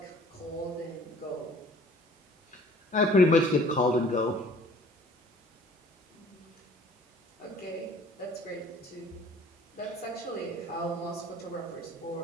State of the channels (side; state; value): both; normal; correlation 0.52